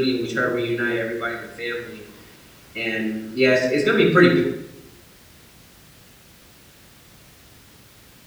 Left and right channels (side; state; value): both; identical; correlation 1.00